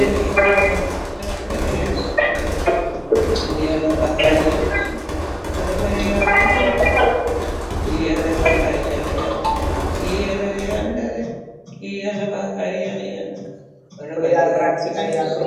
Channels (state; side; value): identical; both; correlation 1.00